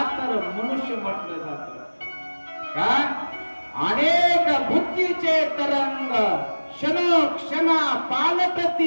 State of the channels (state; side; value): inverted; both; correlation -1.00